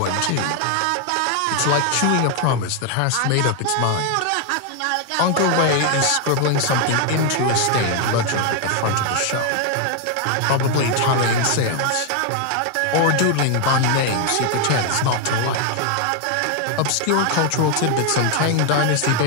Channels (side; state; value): both; different; correlation 0.00